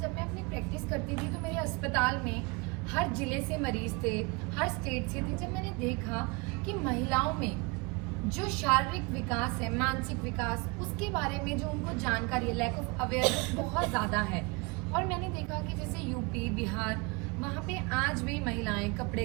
मैं अपनी प्रैक्टिस करती थी तो मेरे अस्पताल में हर जिले से मरीज थे, हर स्टेट से थे। जब मैंने देखा कि महिलाओं में जो शारीरिक विकास है, मानसिक विकास, उसके बारे में जो उनको जानकारी है, लैक ऑफ अवेयरनेस बहुत ज़्यादा है। और मैंने देखा कि जैसे यूपी बिहार वहाँ पे आज भी महिलाएं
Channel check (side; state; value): left; quieter; 27.6 dB